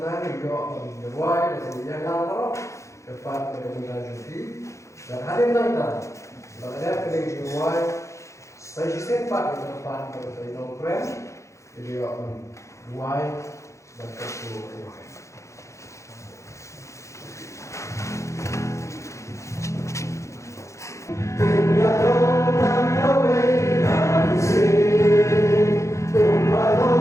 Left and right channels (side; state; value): right; late; 0.14 ms